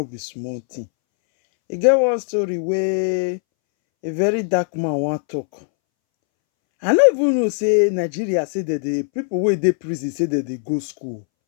be small thing. E get one story wey a very dark man wan talk. I no even know say Nigeria say that the people wey dey prison say that they go school.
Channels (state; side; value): silent; right; 65 dB below the other